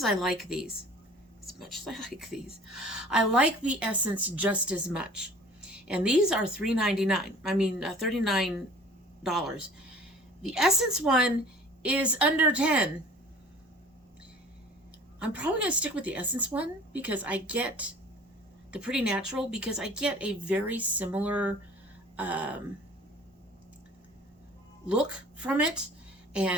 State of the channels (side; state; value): both; normal; correlation 0.47